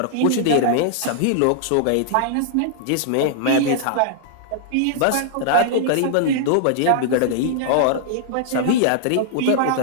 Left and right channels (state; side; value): different; both; correlation -0.01